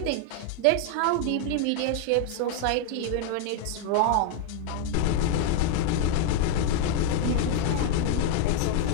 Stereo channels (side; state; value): both; different; correlation 0.00